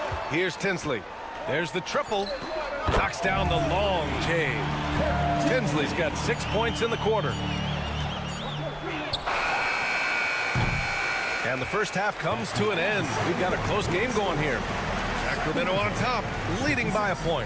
Here's Tinsley. There's the triple. Knocks down the long J. Tinsley's got 6 points in the quarter. And the first half comes to an end. We've got a close game going here. Sacramento on top, leading by a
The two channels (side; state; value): both; identical; correlation 1.00